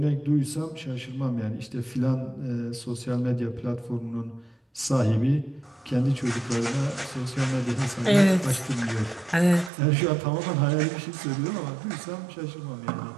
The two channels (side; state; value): left; drops out; at 9.7 s